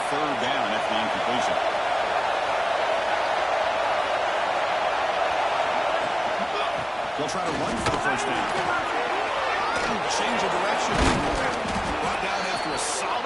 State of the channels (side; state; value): both; identical; correlation 1.00